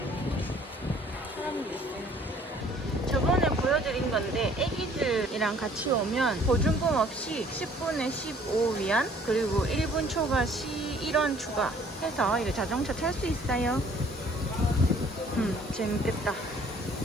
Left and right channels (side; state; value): both; normal; correlation 0.57